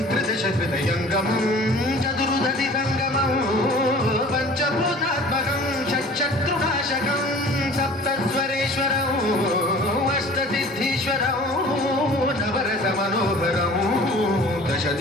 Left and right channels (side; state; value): both; normal; correlation 0.46